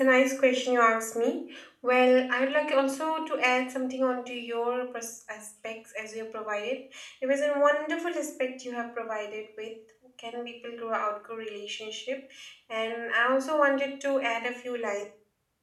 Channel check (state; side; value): identical; both; correlation 1.00